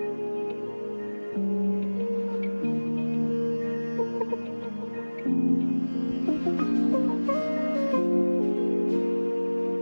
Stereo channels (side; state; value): both; inverted; correlation -1.00